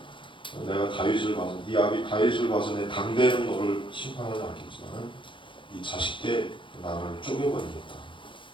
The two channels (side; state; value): right; late; 0.24 ms